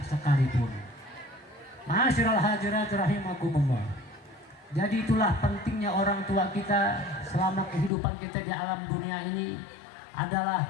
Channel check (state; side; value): drops out; right; at 7.9 s